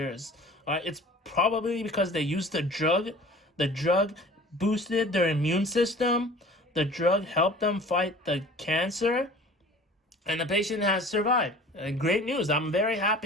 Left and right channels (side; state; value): both; normal; correlation 0.45